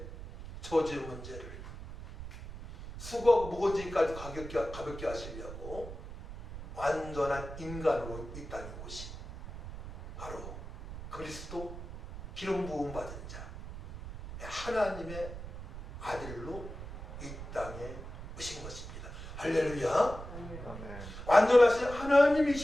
저주의 문제를 수고하고 무거운 짐까지 가볍게 하시려고 완전한 인간으로 이 땅에 오신 바로 그리스도 기름 부음 받은 자 하나님의 아들로 이 땅에 오신 것입니다. 할렐루야. 완전하신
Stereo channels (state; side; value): noise; right; rumble, 11 dB below the sound